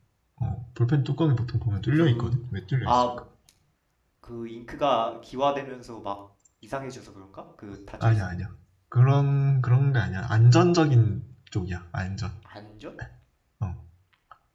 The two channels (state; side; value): identical; both; correlation 1.00